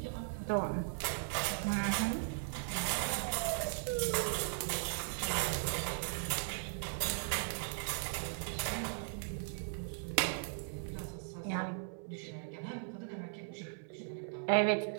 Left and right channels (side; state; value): left; silent; 52 dB below the other